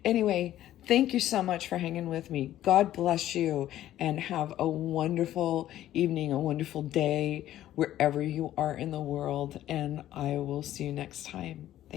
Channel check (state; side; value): quieter; right; 13.0 dB